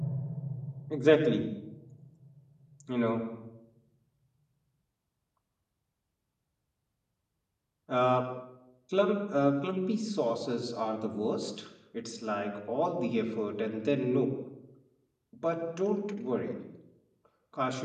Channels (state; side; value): identical; both; correlation 1.00